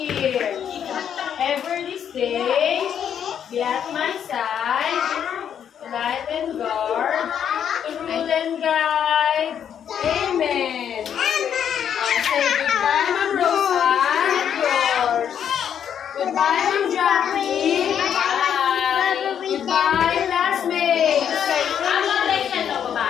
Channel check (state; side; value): quieter; right; 8.7 dB